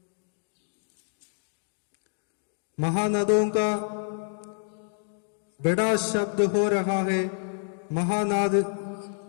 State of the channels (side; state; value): right; silent; digital silence